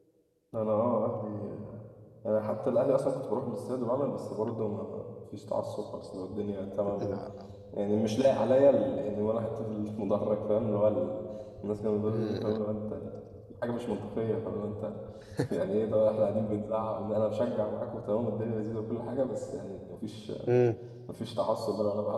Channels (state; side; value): identical; both; correlation 1.00